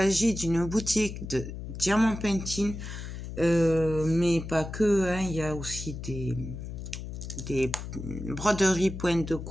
d'une boutique de diamant painting, mais pas que, hein, il y a aussi des broderies pointe de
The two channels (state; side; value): noise; left; hum, 8 dB below the sound